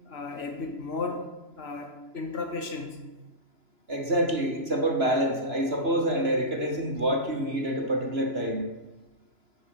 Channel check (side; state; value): left; late; 3.0 ms